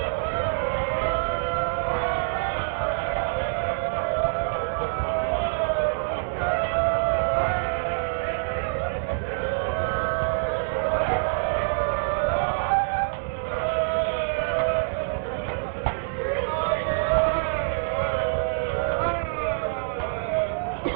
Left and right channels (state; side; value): silent; left; digital silence